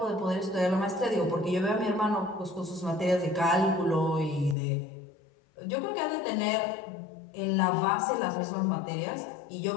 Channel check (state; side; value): drops out; right; at 4.5 s